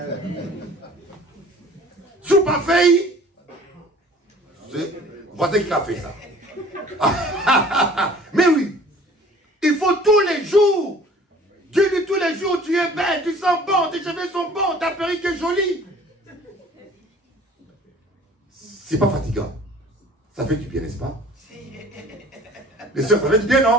Sous pas fait. Voici qui a fait ça. Mais oui. Il faut tous les jours. Dieu dit tous les jours, tu es belle, tu sens bon, tes cheveux sont bons, ta perruque est jolie. C'est pas fatigant. Ça fait du bien, n'est-ce pas? Les soeurs, ça fait du bien,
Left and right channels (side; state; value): both; normal; correlation 0.50